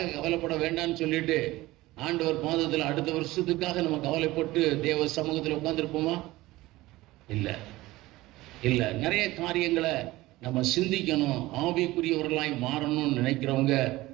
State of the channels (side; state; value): left; quieter; 18.5 dB